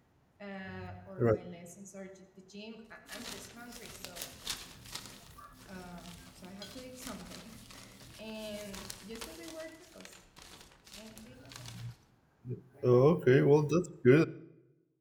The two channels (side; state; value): both; identical; correlation 1.00